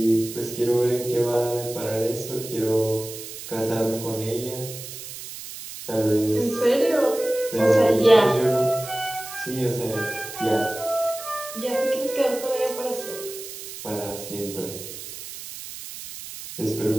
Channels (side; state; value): right; noise; hiss, 11 dB below the sound